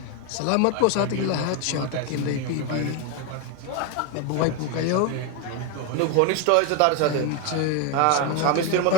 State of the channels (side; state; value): both; different; correlation 0.02